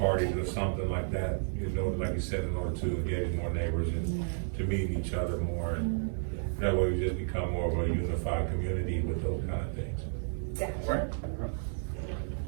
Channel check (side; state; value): left; silent; digital silence